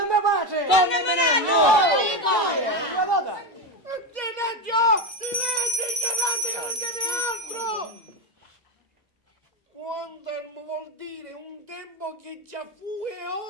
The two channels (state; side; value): normal; both; correlation 0.13